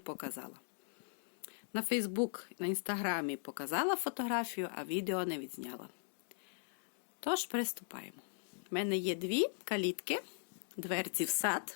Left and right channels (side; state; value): right; silent; digital silence